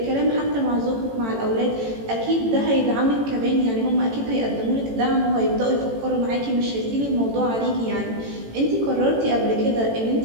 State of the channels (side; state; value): left; late; 18 ms